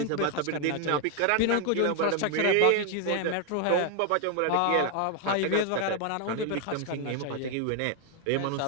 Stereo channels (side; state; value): both; different; correlation 0.00